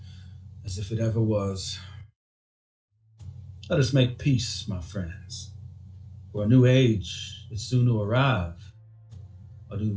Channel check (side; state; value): both; identical; correlation 1.00